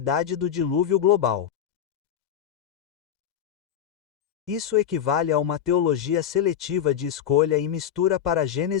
do dilúvio global. Isso equivale a uma teologia seletiva de escolha e mistura para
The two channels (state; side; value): quieter; right; 9.4 dB